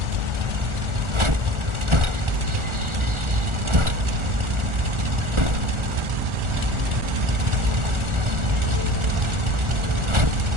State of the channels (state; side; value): late; left; 1.4 ms